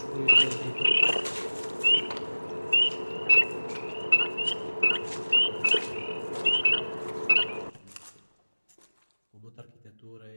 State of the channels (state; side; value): inverted; both; correlation -1.00